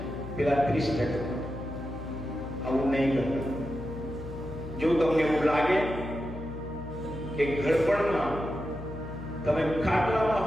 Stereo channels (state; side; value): noise; left; hum, 10 dB below the sound